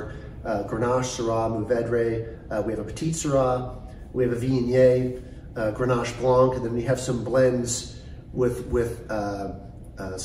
Grenache, Syrah, Mourvedre. We have a Petit Syrah, we have a Viognier, Grenache Blanc, and then we have some blends with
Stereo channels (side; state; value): both; identical; correlation 1.00